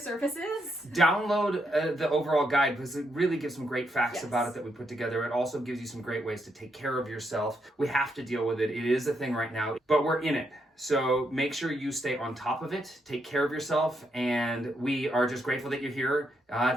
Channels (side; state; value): both; normal; correlation 0.79